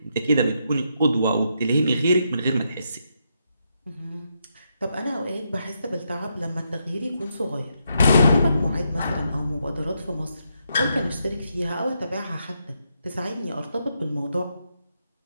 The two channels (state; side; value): inverted; both; correlation -0.80